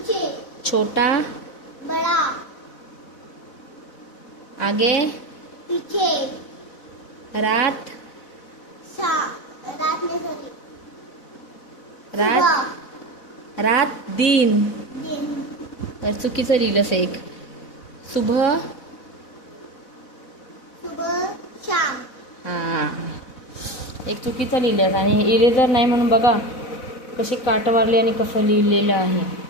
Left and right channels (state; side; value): late; right; 4.0 ms